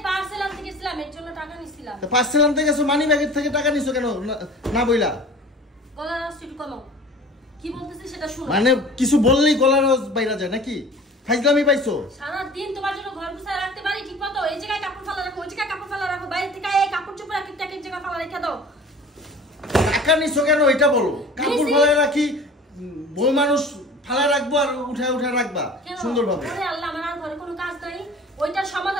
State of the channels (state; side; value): normal; both; correlation 0.42